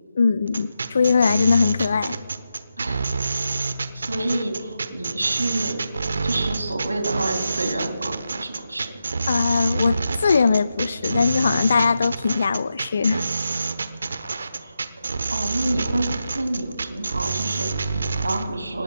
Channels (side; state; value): both; inverted; correlation -0.88